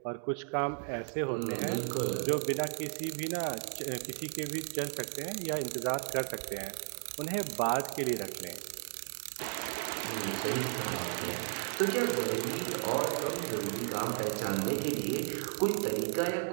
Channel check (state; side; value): silent; left; 55 dB below the other